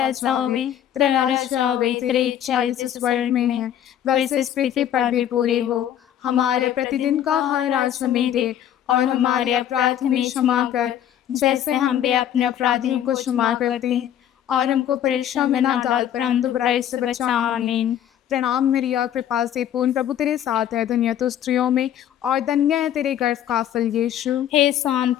जावे, तेरा राज्य आवे, तेरी इच्छा जैसे स्वर्ग में है वैसे इस पृथ्वी पर भी पूरी हो। हमारे प्रतिदिन का हर आज हमें दे, और हमारे अपराध हमें क्षमा कर, जैसे हम भी अपने अपराधियों को क्षमा करते हैं, और हमको परीक्षा में ना डाल, परंतु बुराई से बचा। आमीन। प्रणाम मरिया, कृपा से पूर्ण, प्रभु तेरे साथ है, धन्य तू स्त्रियों में और धन्य है तेरे गर्भ का फल यीशु। हे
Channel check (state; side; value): quieter; right; 10.6 dB